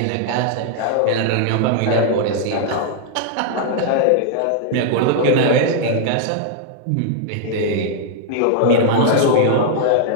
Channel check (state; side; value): different; both; correlation -0.01